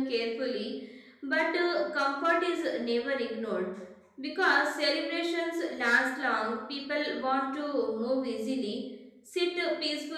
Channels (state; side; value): identical; both; correlation 1.00